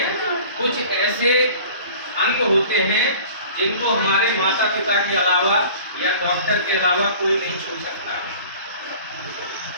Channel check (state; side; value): inverted; both; correlation -0.45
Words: कुछ ऐसे अंग होते हैं जिनको हमारे माता पिता के अलावा या डॉक्टर के अलावा कोई नहीं छू सकता